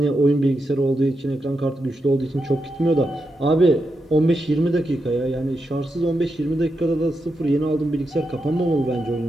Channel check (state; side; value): normal; both; correlation 0.86